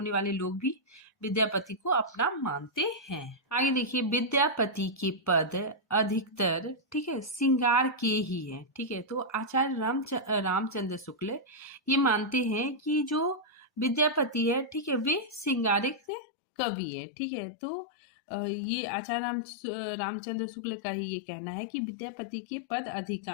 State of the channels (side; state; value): right; drops out; at 16.0 s